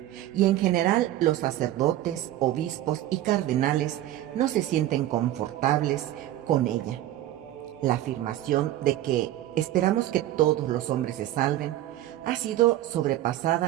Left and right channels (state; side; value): quieter; left; 13.8 dB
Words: y en general los sacerdotes, obispos y cardenales no se sienten confortables con ella. La afirmación de que esperamos que todos los hombres se salven ha sido